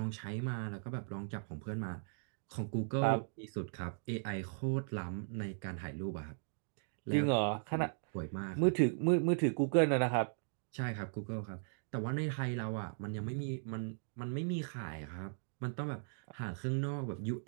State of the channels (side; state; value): left; silent; digital silence